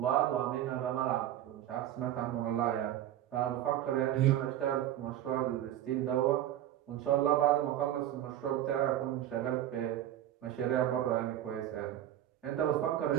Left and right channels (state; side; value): quieter; left; 12.2 dB